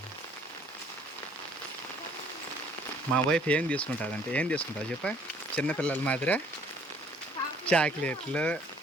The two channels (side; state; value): both; normal; correlation 0.59